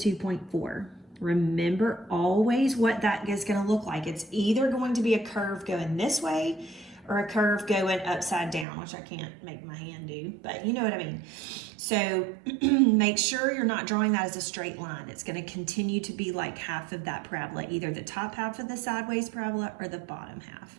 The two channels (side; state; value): left; drops out; at 8.7 s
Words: Remember always what that is going to look like. It's either going to be a curve going this way or a curve going upside down, which I can't make my hand do, but you know what I mean. So make sure you're not drawing that as a straight line. It's going to continue to be like half of that parabola, either the top half of the sideways parabola or the bottom half.